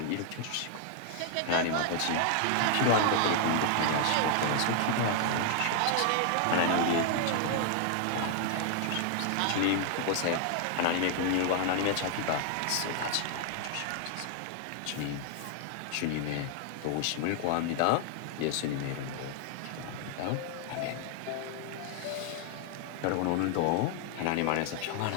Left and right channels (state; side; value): different; both; correlation 0.00